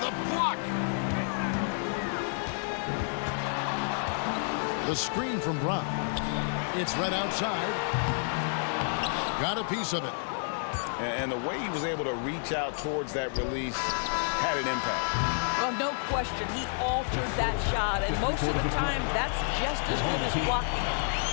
block. The screen from Brown. It's right outside. Got a piece of it. And the way he was able to reach out towards that release had an impact. Well, no question, he altered that shot, and most of the time, that's just as good as blocking.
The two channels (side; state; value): right; silent; 58 dB below the other